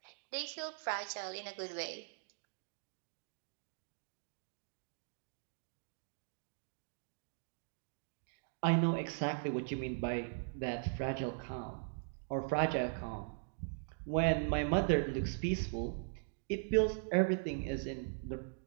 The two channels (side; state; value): left; silent; digital silence